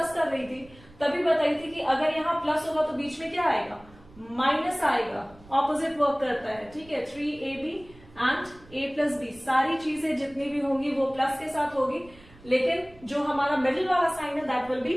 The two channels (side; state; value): right; noise; rumble, 24 dB below the sound